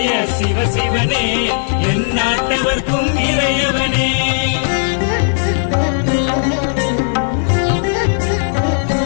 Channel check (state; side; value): silent; right; digital silence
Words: சிவசிவனே, என் நாட்டவர்க்கும் இறையவனே.